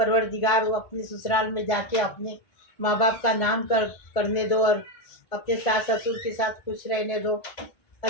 वो अपने ससुराल में जाके अपने माँ बाप का नाम करने दो, और अपने सास ससुर के साथ खुश रहने दो।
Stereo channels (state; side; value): late; right; 1.7 ms